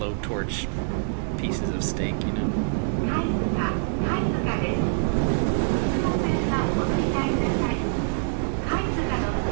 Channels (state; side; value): silent; left; digital silence